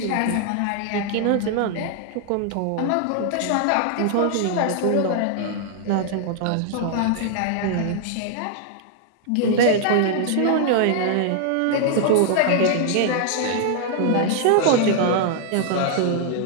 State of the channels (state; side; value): different; both; correlation -0.01